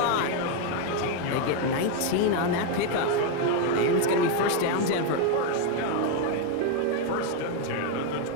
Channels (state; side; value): different; both; correlation 0.01